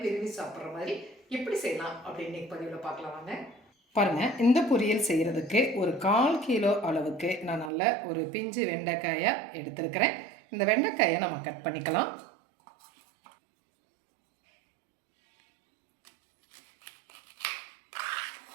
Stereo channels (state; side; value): drops out; left; at 7.7 s